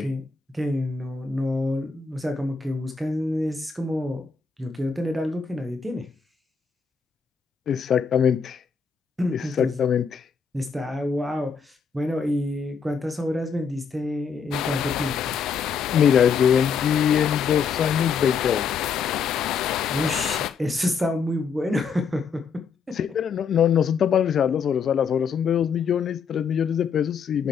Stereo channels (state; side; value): quieter; right; 6.0 dB